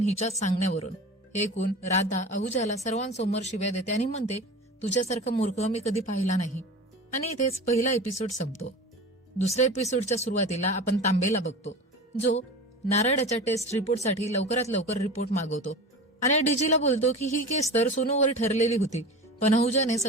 हिच्याच सांगण्यावरून. हे ऐकून राधा अहुजाला सर्वांसमोर शिव्या देते आणि म्हणते, तुझ्यासारखा मूर्ख मी कधी पाहिला नाही. आणि इथेच पहिला एपिसोड संपतो. दुसऱ्या एपिसोडच्या सुरुवातीला आपण तांबेला बघतो, जो नारळाच्या टेस्ट रिपोर्टसाठी लवकरात लवकर रिपोर्ट मागवतो आणि डीजीला बोलतो की ही केस तर सोनूवर ठरलेली होती, पण अहुजाने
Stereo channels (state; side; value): normal; both; correlation 0.33